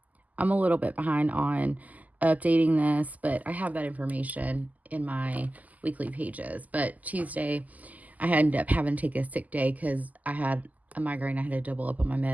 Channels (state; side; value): late; left; 0.078 ms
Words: I'm a little bit behind on updating this, but I have that information in my weekly pages. But Tuesday, I ended up having to take a sick day because I had a migraine. I had to double up on my